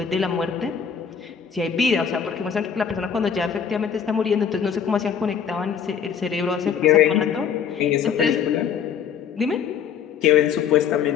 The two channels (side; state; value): right; quieter; 7.5 dB